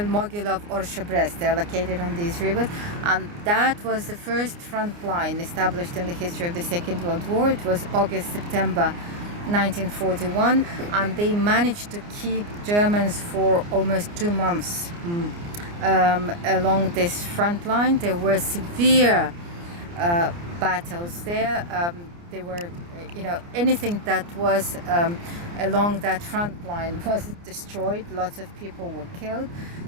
Orsha, Brest. They're located on these rivers. And that was the first front line established in the history of the Second World War. It was August, September 1941, and they managed to keep Germans for almost 2 months along this front line. There were severe battles there. There were, anything that was along that front line was destroyed. Lots of people were killed,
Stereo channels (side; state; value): left; late; 29 ms